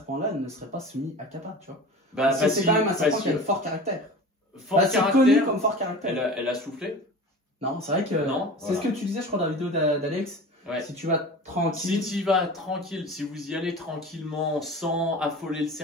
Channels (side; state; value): both; normal; correlation 0.35